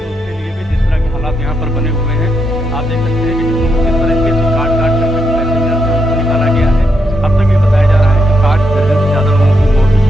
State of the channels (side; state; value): both; normal; correlation 0.79